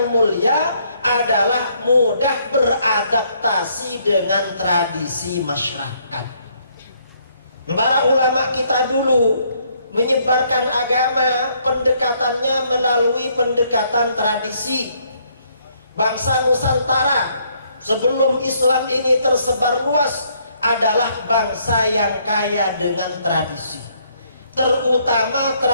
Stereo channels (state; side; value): inverted; both; correlation -0.69